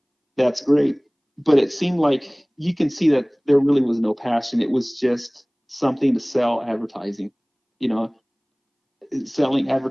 that's great. But it seemed like you can see that there really was no passion. It was just something to sell advertising, you know, selling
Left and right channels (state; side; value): identical; both; correlation 1.00